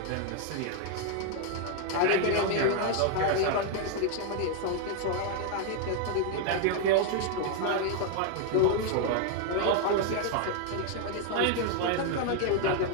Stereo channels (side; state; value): both; different; correlation 0.00